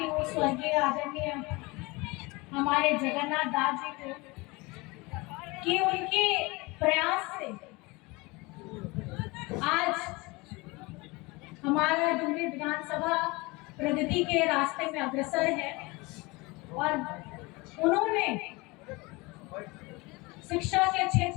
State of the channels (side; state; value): right; quieter; 24.5 dB